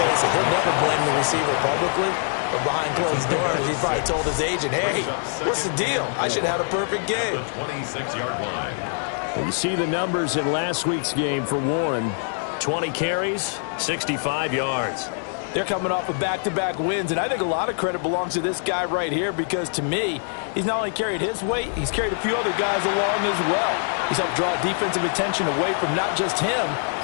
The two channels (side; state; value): right; silent; 63 dB below the other